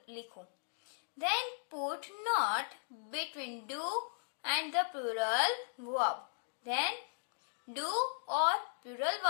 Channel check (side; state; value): right; silent; digital silence